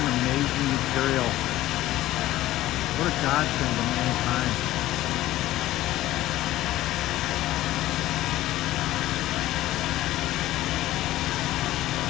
amazing material. What a godsend to mankind.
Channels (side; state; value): right; quieter; 15.3 dB